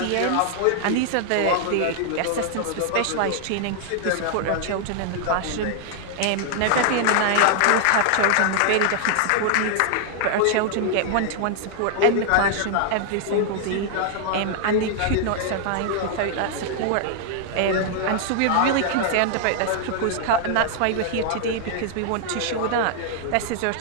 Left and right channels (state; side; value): different; both; correlation 0.00